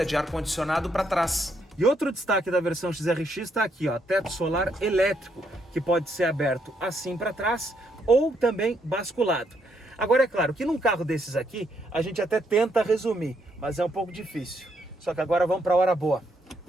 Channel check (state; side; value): normal; both; correlation 0.75